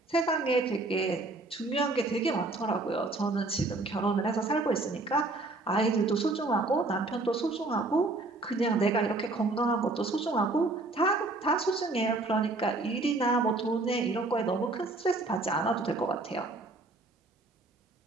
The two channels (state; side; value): quieter; left; 3.1 dB